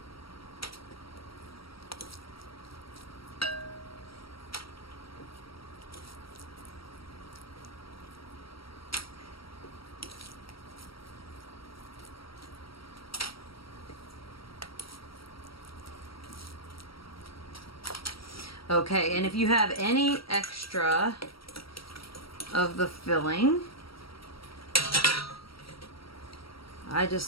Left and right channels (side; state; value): right; late; 0.75 ms